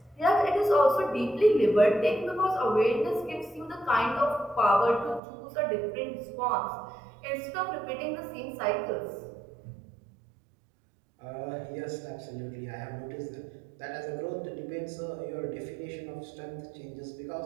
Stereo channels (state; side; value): drops out; left; at 5.2 s